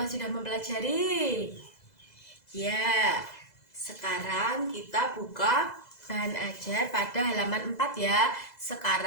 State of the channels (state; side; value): late; right; 2.0 ms